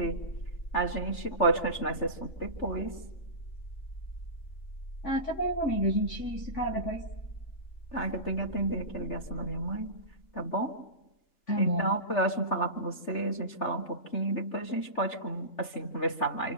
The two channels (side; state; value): right; late; 3.4 ms